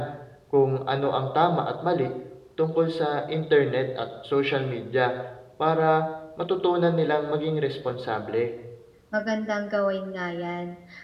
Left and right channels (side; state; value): both; identical; correlation 1.00